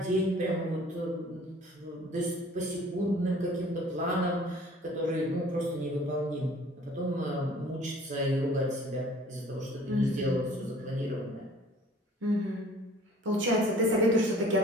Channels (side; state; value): both; normal; correlation 0.51